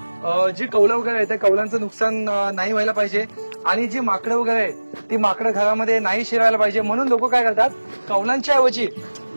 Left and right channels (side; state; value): both; inverted; correlation -1.00